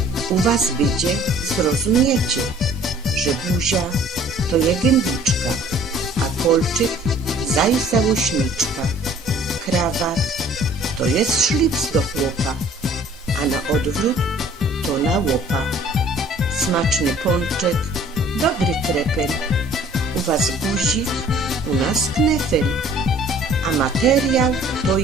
u was będzie zrozumiecie, że buzia to je gębiczka, a kolczyk zaj załośniczka. Krawat to jest szlips do chłopa, a na odwrót to na łopa. Smaczny pączek, dobry krepel, u was guzik, u nas knefel, a materiał to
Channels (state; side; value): normal; both; correlation 0.53